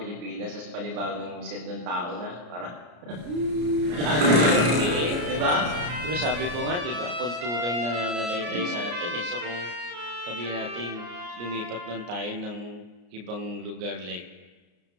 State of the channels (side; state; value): left; late; 33 ms